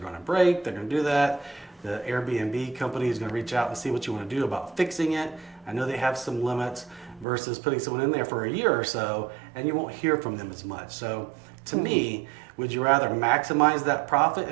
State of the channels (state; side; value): drops out; left; at 7.2 s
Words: to break. They're going to do that. The Airbnb company is going to reach out and see what you want to do about fixing it. I know they have some limits versus putting someone in there for a year or so and you won't hear from them as much. So to me, would you rather maximize that profit